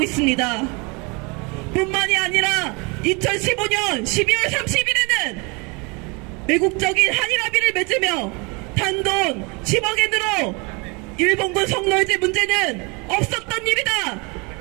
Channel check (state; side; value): quieter; left; 29.5 dB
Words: 있습니다. 뿐만이 아니라 2015년 12월 30일에는 매국적인 한일합의를 맺으며 단돈 10억엔으로 일본군 성노예제 문제는 없었던 일이다,